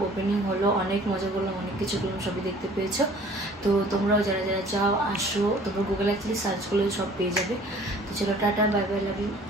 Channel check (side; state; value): both; normal; correlation 0.51